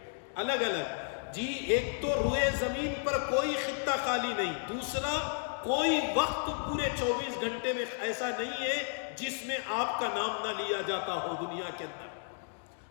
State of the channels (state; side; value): silent; right; 56 dB below the other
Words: الگ الگ۔ جی ایک تو روئے زمین پر کوئی خطہ خالی نہیں، دوسرا کوئی وقت پورے 24 گھنٹے میں ایسا نہیں ہے جس میں آپ کا نام نہ لیا جاتا ہو دنیا کے اندر۔